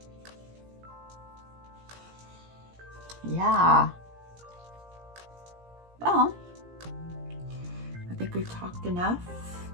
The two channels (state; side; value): late; left; 17 ms